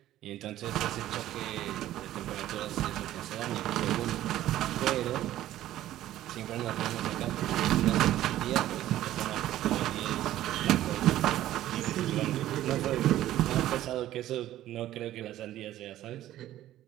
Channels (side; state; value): left; quieter; 13.7 dB